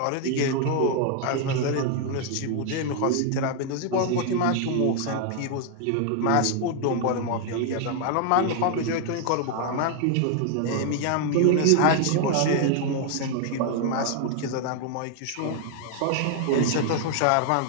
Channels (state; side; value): different; both; correlation 0.00